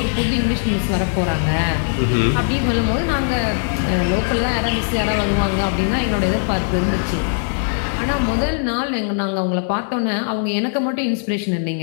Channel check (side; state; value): right; silent; 66 dB below the other